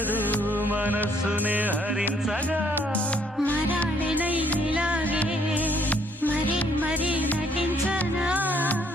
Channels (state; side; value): normal; both; correlation 0.66